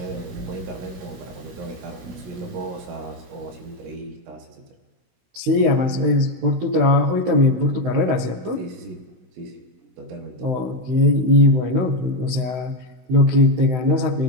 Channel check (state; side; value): late; left; 16 ms